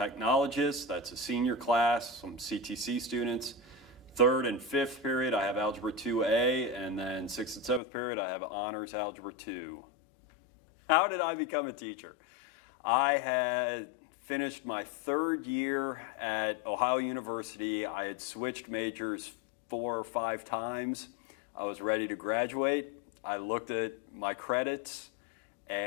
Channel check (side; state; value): right; drops out; at 7.8 s